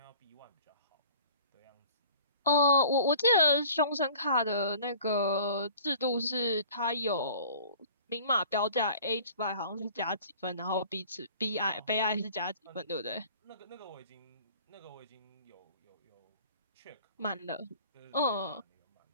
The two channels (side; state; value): both; inverted; correlation -0.48